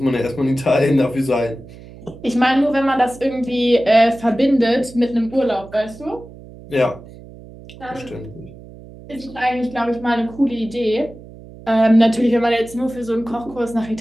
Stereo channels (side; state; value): right; noise; hum, 18 dB below the sound